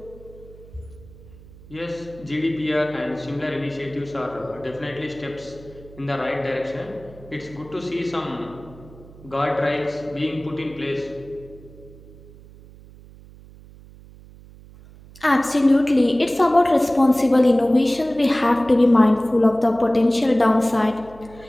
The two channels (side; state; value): right; noise; hum, 21 dB below the sound